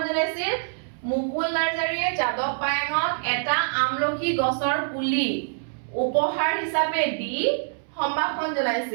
মুকুল নাৰ্জাৰীয়ে যাদৱ পায়েঙক এটা আমলখি গছৰ পুলি উপহাৰ হিচাপে দি সম্ভাষণ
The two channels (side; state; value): left; silent; 62 dB below the other